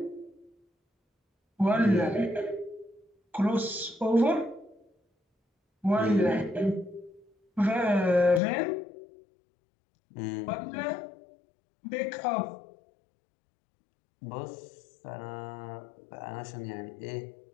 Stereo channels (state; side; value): drops out; right; at 8.4 s